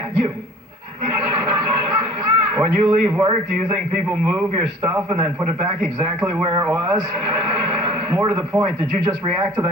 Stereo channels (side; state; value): both; normal; correlation 0.47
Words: you. When you leave work, do you think people move your stuff and then put it back exactly where it was? More to the point, did you just react to